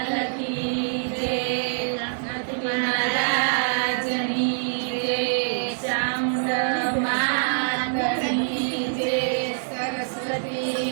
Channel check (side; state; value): left; silent; digital silence